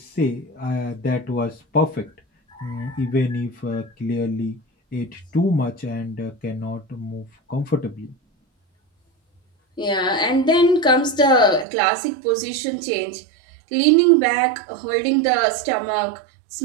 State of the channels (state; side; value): drops out; left; at 11.7 s